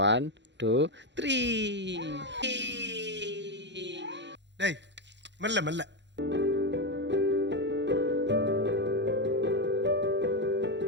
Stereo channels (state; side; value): late; left; 0.52 ms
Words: 1 2 3. டேய் மெல்ல மெல்ல.